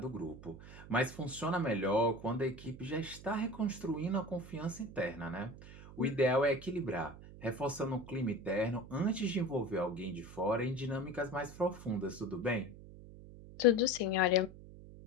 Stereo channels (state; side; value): noise; right; hum, 16 dB below the sound